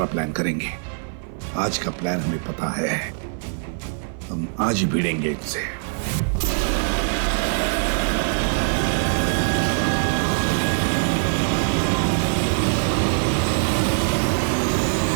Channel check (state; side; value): silent; left; 56 dB below the other